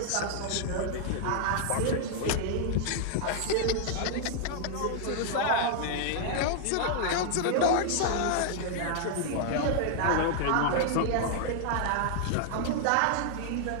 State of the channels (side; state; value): both; different; correlation 0.00